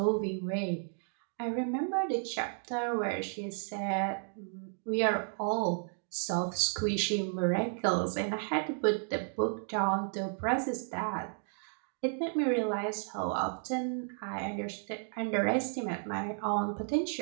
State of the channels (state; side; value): silent; left; 56 dB below the other